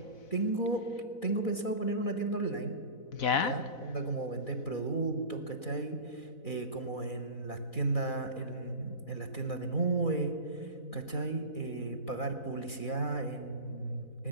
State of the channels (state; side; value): late; right; 4.0 ms